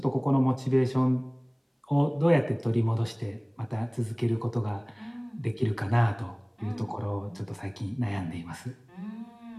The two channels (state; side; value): identical; both; correlation 1.00